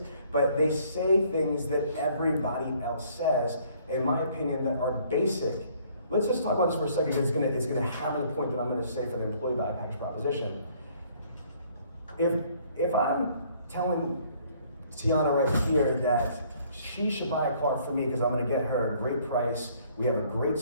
But they say things that everybody else says, in my opinion, that are basic. Let's just talk about this for a second. It's gonna hammer the point that I'm gonna say for the employee value package proposition. If I'm telling Tiana right here that she should buy a car from me because I'm gonna get her a great price, we have a great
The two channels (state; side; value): inverted; both; correlation -0.61